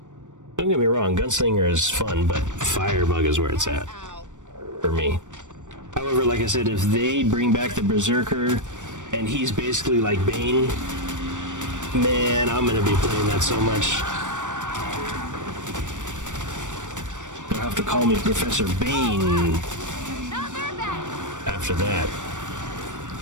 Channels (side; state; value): left; late; 0.86 ms